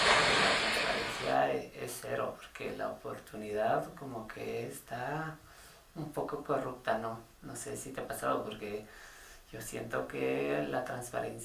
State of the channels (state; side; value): identical; both; correlation 1.00